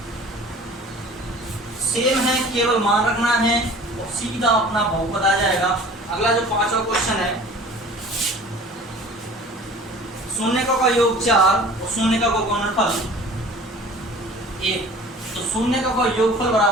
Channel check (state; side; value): normal; both; correlation 0.45